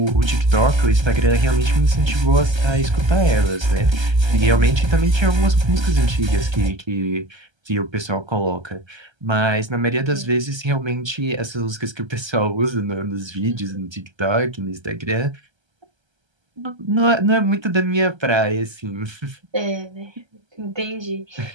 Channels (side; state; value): left; late; 1.3 ms